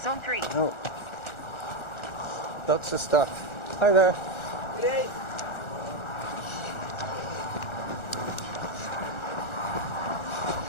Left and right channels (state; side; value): late; right; 1.4 ms